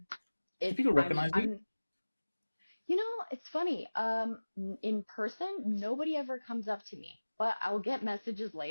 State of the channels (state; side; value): inverted; both; correlation -1.00